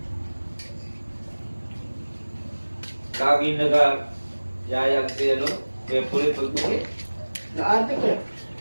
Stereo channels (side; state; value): both; inverted; correlation -1.00